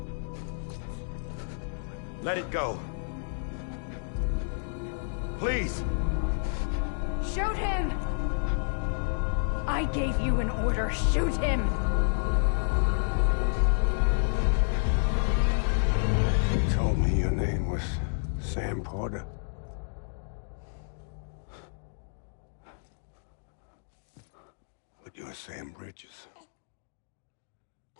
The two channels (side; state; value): right; silent; digital silence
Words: Let it go. Please. Shoot him! I gave you an order. Shoot him! You told me your name was Sam Porter. But you're Sam Bridges.